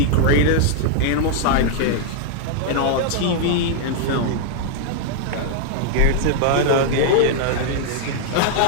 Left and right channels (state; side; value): different; both; correlation -0.01